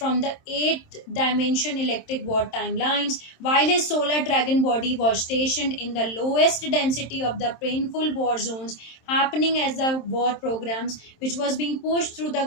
the 8th dimension electric war timelines, while his solar dragon body was stationed in the lowest density of the painful war zones happening as the war programs which was being pushed through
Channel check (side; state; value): right; late; 27 ms